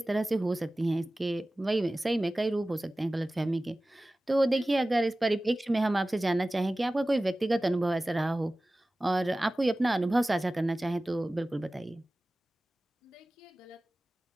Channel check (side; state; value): both; normal; correlation 0.97